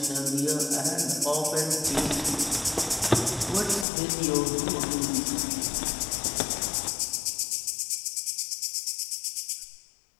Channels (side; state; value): right; drops out; at 3.9 s